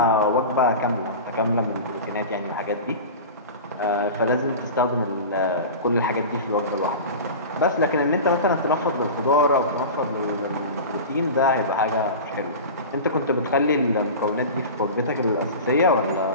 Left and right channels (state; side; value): inverted; both; correlation -0.31